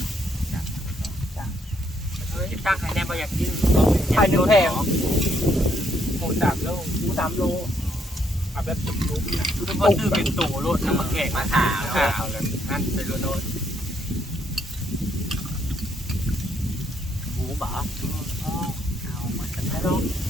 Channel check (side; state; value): both; normal; correlation 0.72